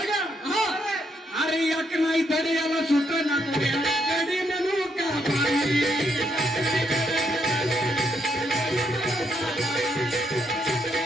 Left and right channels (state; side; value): normal; both; correlation 0.76